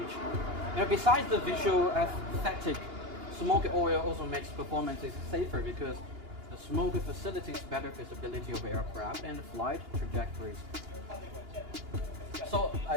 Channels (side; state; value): left; late; 2.8 ms